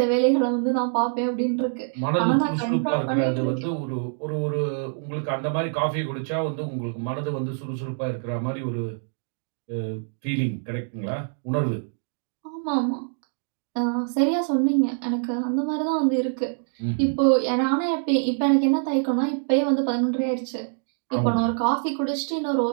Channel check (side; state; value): left; silent; digital silence